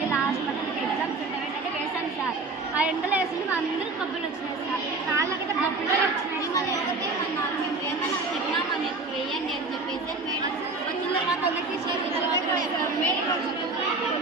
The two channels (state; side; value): quieter; left; 3.6 dB